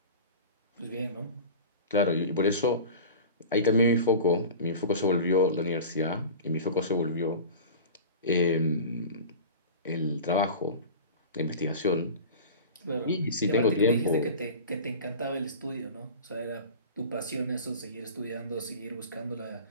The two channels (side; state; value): both; inverted; correlation -0.35